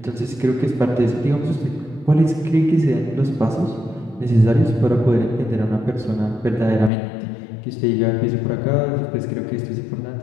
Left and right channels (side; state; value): right; drops out; at 6.9 s